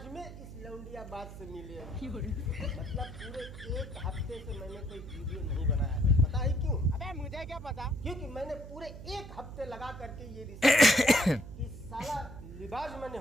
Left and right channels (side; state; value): right; noise; hum, 12 dB below the sound